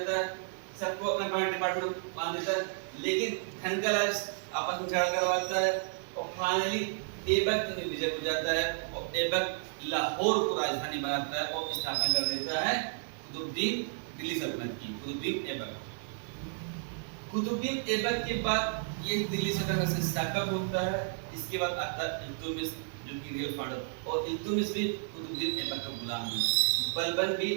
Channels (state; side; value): silent; left; digital silence